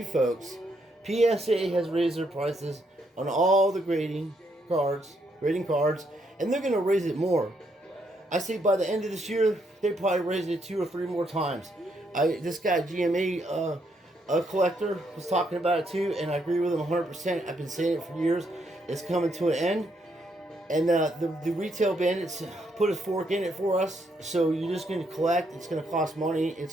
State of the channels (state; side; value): normal; both; correlation 0.75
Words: folks, PSA has raised their prices on all the grading cards, and they're going to raise it more. I say by the end of this year, they probably raise it 2 or 3 more times. This guy, GMA collector, was talking about it too, and I agree with him 100%. I've been saying it for years. It's coming to an end. And the retail bandits put a fork in it for us. So you're just going to collect. It's going to cost money.